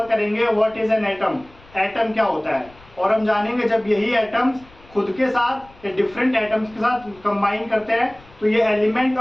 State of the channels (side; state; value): left; noise; rumble, 26 dB below the sound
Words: करेंगे what is an atom. Atom क्या होता है, और हम जानेंगे जब यही एटम्स खुद के साथ या डिफरेंट एटम्स के साथ कंबाइन करते हैं तो ये एलिमेंट